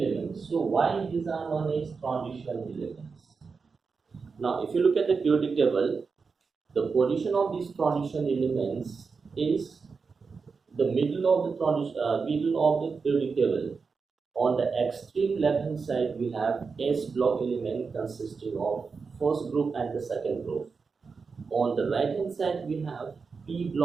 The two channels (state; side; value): quieter; left; 5.0 dB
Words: So why these are known as transition elements? Now if you look at the periodic table, the position of these transition elements is the middle of the periodic table. On the extreme left hand side we have S block element consisting of first group and the second group. On the right hand side we have P